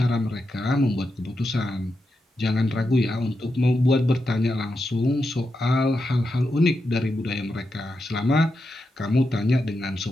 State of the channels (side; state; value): both; normal; correlation 0.87